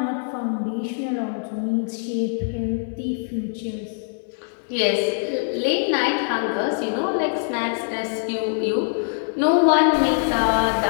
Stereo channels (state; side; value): silent; right; digital silence